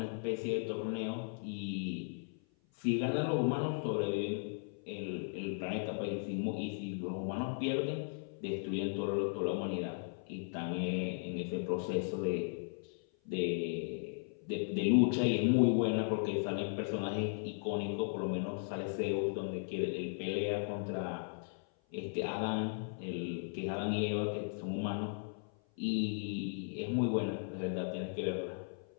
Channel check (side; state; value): right; silent; 53 dB below the other